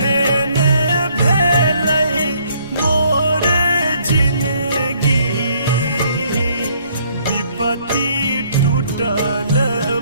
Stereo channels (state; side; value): inverted; both; correlation -0.65